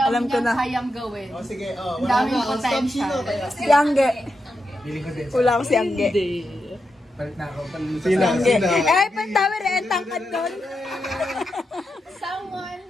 Alam ko niyang na. kayang gawin. O sige, Ang wala daming na. O, stop potential. sino kaya? Si Angge. Feeling ko din. Wala ko si Angge. Palit na ako. Sina, Angge. sina. Eh, pantawi rin, tangkad doon. Someone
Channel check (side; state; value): both; normal; correlation 0.86